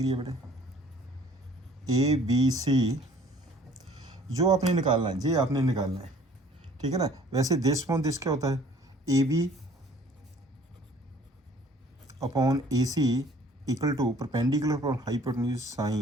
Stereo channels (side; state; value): both; normal; correlation 0.54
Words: है बेटे, ABC जो आपने निकालना है, ये आपने निकालना है, ठीक है ना। वैसे दिस अपॉन दिस क्या होता है, AB upon AC equal to perpendicular upon hypotenuse